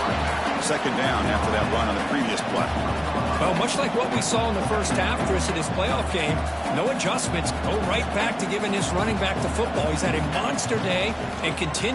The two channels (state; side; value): identical; both; correlation 1.00